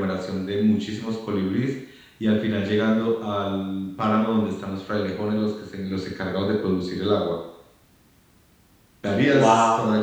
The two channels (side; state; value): both; identical; correlation 1.00